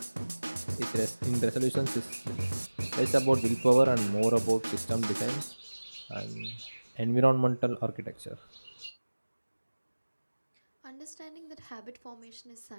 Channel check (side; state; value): both; inverted; correlation -1.00